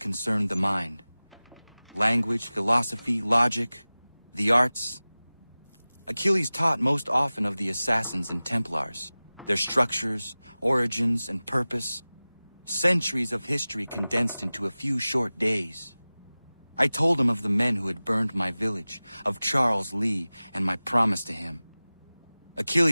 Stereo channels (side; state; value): both; inverted; correlation -0.98